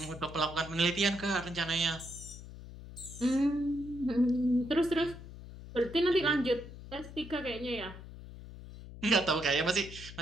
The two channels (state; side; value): noise; left; hum, 14 dB below the sound